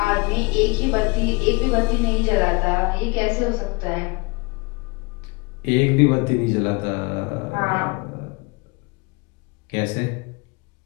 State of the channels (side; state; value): right; quieter; 27.9 dB